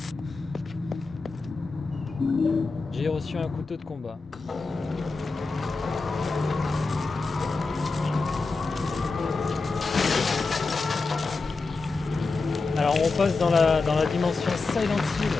J'ai reçu un couteau de combat. Alors on passe dans la dimension Silent Hill.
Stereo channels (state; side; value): quieter; right; 3.9 dB